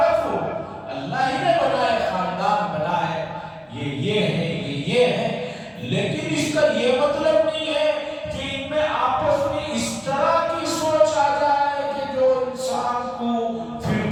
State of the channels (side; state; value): both; identical; correlation 1.00